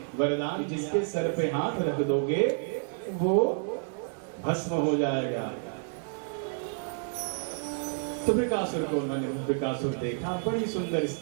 वरदान, जिसके सर पे हाथ रख दोगे वो भस्म हो जाएगा। तो वृकासुर को मैंने वृकासुर देखा, बड़ी सुंदर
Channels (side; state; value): left; silent; 58 dB below the other